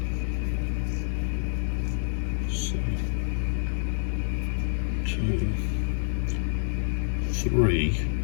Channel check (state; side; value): silent; right; digital silence